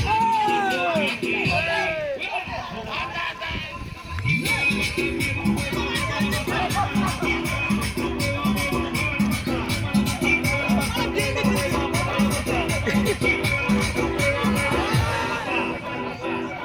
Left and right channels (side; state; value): both; identical; correlation 1.00